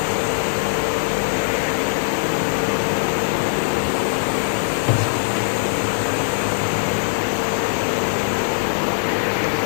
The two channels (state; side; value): silent; right; digital silence